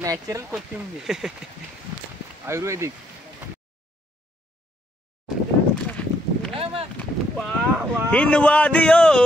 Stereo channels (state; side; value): normal; both; correlation 0.72